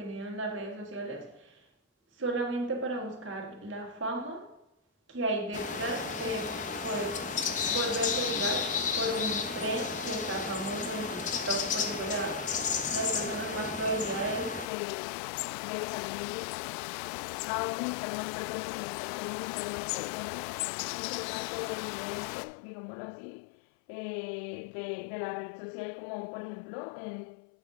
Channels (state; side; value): drops out; right; at 14.7 s